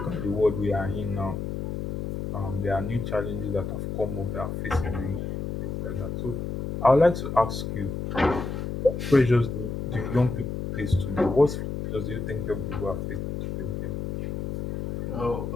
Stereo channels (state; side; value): noise; left; hum, 4 dB below the sound